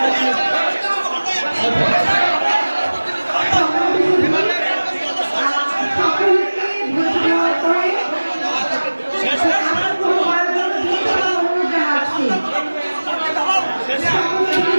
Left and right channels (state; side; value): inverted; both; correlation -1.00